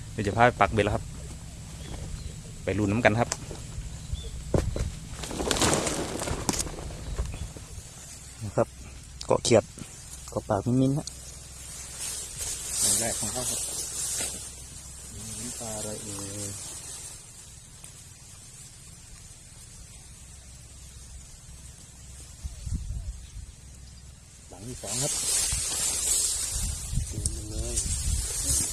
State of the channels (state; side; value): identical; both; correlation 1.00